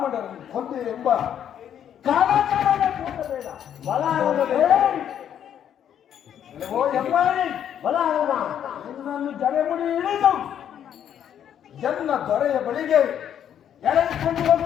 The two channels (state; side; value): quieter; right; 9.6 dB